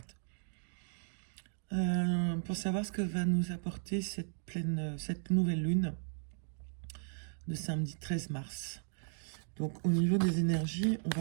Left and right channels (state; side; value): silent; left; digital silence